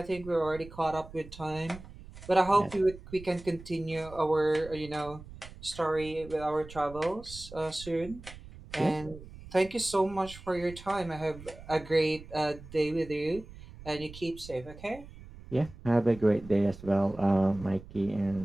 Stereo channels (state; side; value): noise; right; rumble, 17 dB below the sound